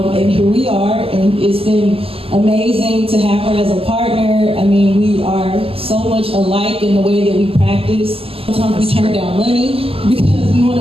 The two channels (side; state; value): left; late; 0.28 ms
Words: and here we are, and it's been amazing to have her as a partner. I mean, we are so much alike in the way that we practice. Sometimes we turn down money because we want